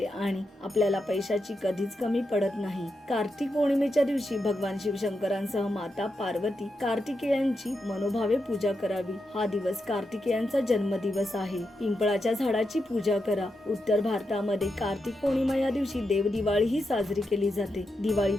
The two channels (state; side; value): normal; both; correlation 0.86